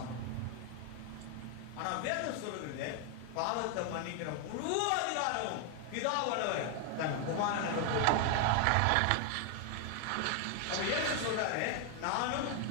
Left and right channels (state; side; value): different; both; correlation 0.00